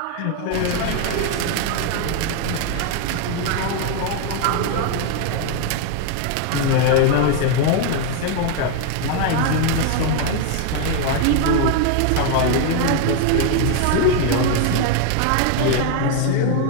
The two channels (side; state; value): both; different; correlation 0.01